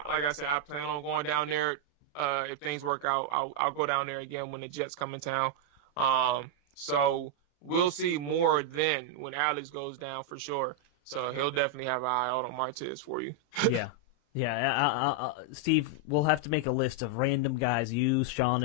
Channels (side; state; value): right; late; 34 ms